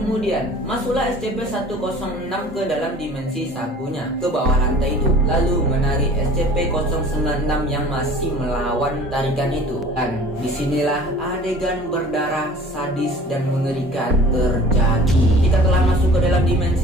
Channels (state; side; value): normal; both; correlation 0.46